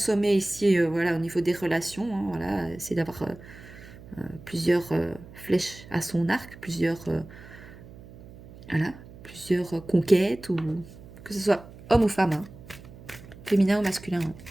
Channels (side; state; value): right; noise; hum, 18 dB below the sound